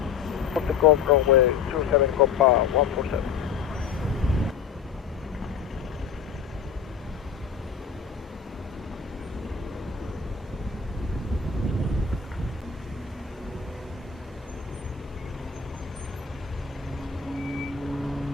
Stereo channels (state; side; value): quieter; right; 6.8 dB